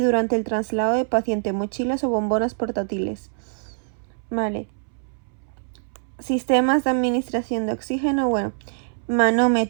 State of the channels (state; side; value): silent; left; 63 dB below the other